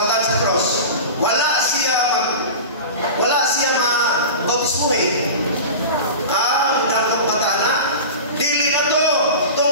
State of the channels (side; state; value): both; inverted; correlation -0.31